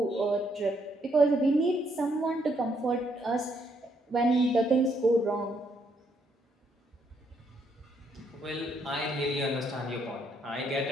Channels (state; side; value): normal; both; correlation 0.73